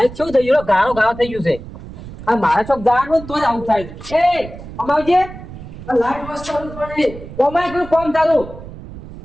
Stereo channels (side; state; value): right; noise; rumble, 14 dB below the sound